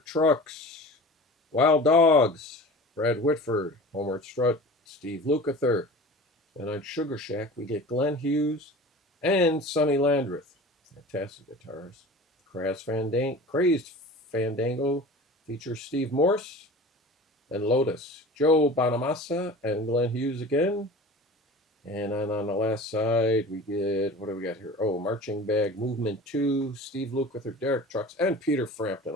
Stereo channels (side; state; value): both; normal; correlation 0.38